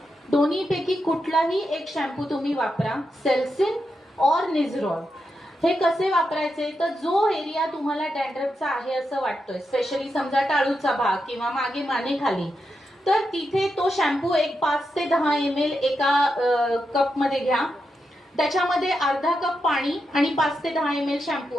दोन्हीपैकी कुठलाही एक शॅम्पू तुम्ही वापरा, सेल्सिन और निझरॉल. हे कसे वापरायचे तर जो एरिया तुम्हाला डॅन्ड्रफचा आहे असं वाटतोय, स्पेशली समजा टाळूचा भाग किंवा मागे मानेखाली, तर तिथे तो शॅम्पू एक 5 ते 10 ml एका कप मध्ये घ्या. त्याच्यामध्ये अर्धा कप पाणी आणि 5 ते 10 ml शॅम्पू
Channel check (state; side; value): normal; both; correlation 0.86